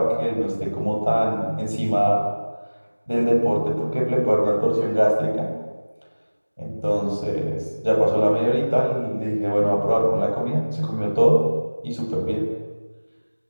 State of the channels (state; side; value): inverted; both; correlation -1.00